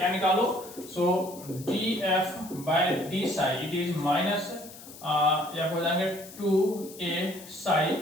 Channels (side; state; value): left; noise; hiss, 17 dB below the sound